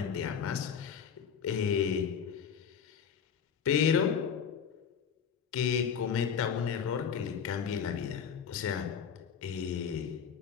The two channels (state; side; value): quieter; right; 7.3 dB